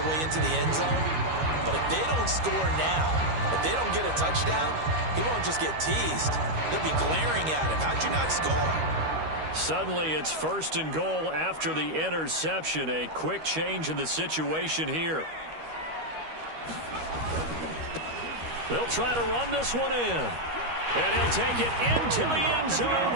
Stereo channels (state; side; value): late; left; 13 ms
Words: way into the end zone. But if they don't score now, if they don't get a touchdown, he won't just get teased. They'll be glaring at him. How'd you not score? Suddenly it's 1st and goal after the interception. A quick change in the situation here. They'll try to run this one in. And he'll take it into the end zone